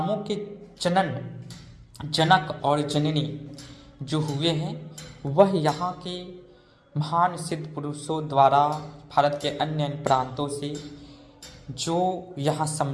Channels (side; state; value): both; identical; correlation 1.00